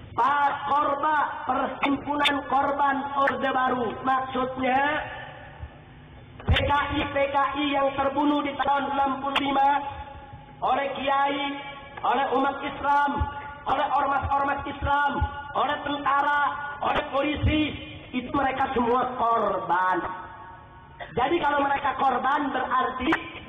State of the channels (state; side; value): identical; both; correlation 1.00